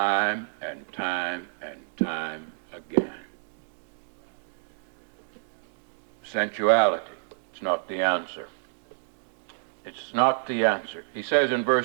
and time and time again. Sensuality. It's not the answer. It's not the answer. He says in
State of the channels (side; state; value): left; silent; digital silence